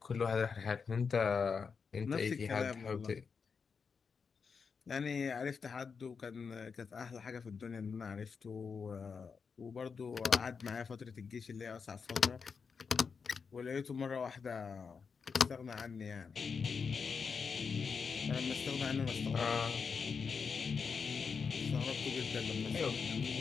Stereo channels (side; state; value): right; quieter; 5.6 dB